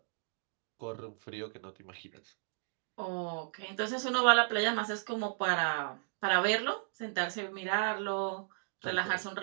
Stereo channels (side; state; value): left; silent; digital silence